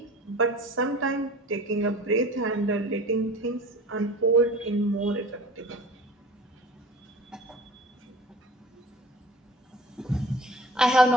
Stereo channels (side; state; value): both; normal; correlation 0.42